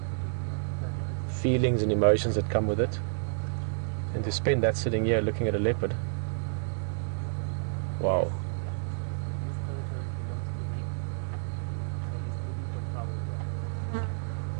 feelings and emotions that come with it. And to spend that sitting here looking at a leopard, wow.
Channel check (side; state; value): left; silent; digital silence